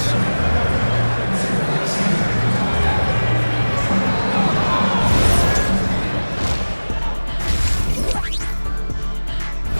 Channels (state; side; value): inverted; both; correlation -1.00